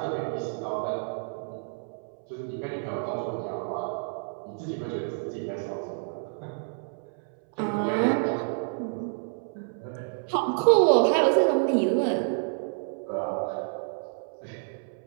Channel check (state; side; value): silent; left; 59 dB below the other